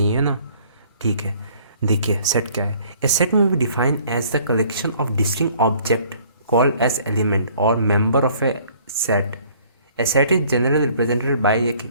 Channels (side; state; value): both; inverted; correlation -0.57